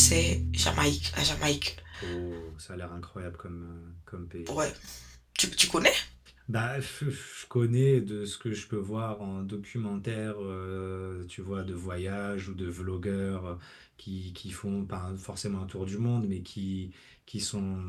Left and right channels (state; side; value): identical; both; correlation 1.00